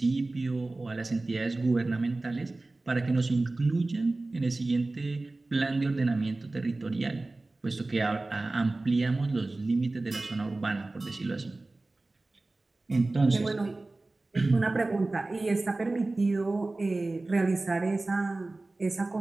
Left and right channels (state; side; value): quieter; left; 3.1 dB